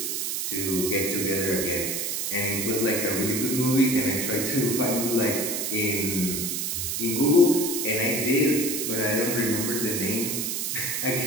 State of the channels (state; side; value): noise; right; hiss, 1 dB below the sound